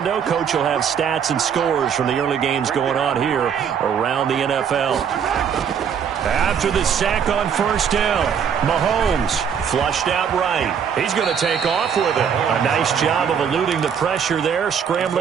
Coach will have stats and scores from the early games going on here around the NFL. After the sack on 1st down, Mahomes flushed out right. He's going to take off with it. A nice job of eluding the pressure there,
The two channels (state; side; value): quieter; left; 7.6 dB